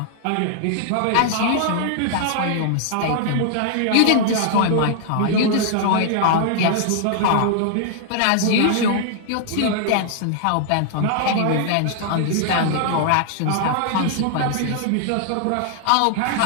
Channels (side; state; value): both; different; correlation -0.01